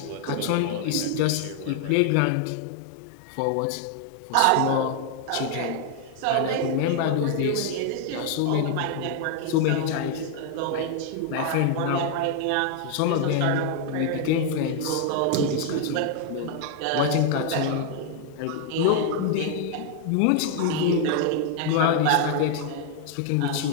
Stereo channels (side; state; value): both; different; correlation 0.00